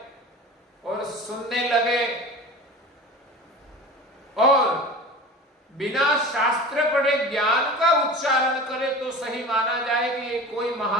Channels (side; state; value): both; normal; correlation 0.36